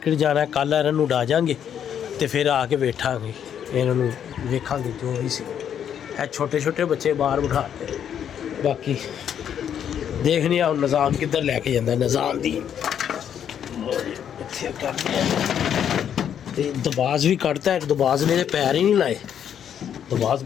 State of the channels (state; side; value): quieter; right; 9.0 dB